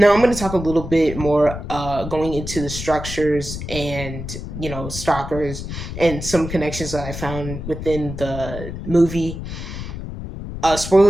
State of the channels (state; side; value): noise; left; rumble, 8 dB below the sound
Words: I'm going to talk a little bit more going into the structures and stalkers and some connections that I found within the movie.